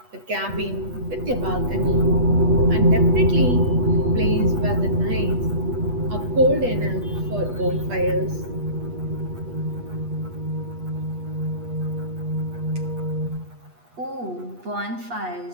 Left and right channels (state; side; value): late; left; 8.3 ms